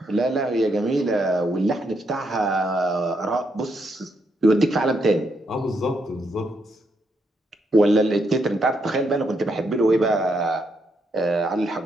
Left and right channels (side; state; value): both; normal; correlation 0.78